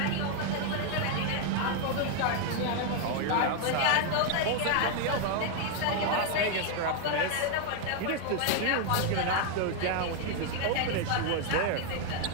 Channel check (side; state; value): both; different; correlation 0.01